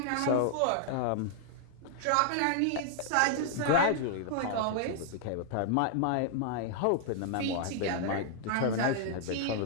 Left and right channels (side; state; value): both; different; correlation -0.01